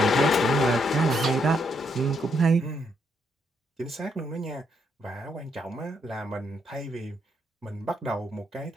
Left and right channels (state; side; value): normal; both; correlation 0.76